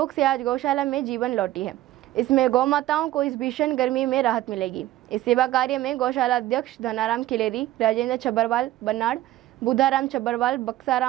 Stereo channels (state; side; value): quieter; left; 15.1 dB